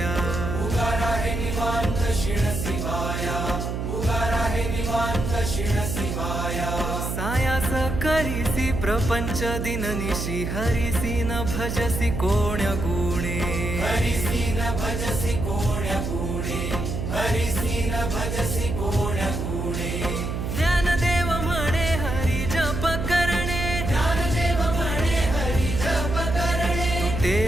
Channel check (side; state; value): right; noise; hum, 3 dB below the sound